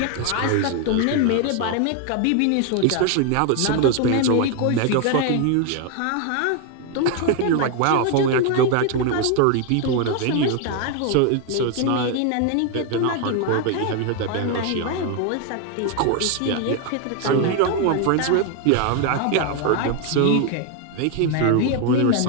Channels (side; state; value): both; different; correlation 0.01